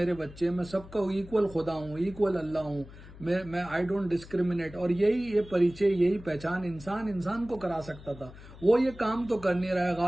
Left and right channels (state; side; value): noise; left; hum, 18 dB below the sound